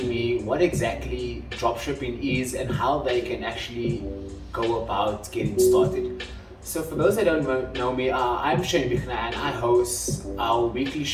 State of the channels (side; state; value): both; identical; correlation 1.00